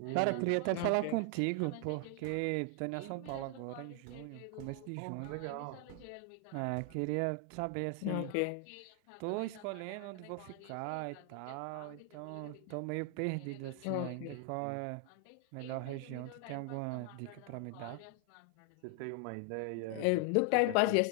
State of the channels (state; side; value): different; both; correlation 0.00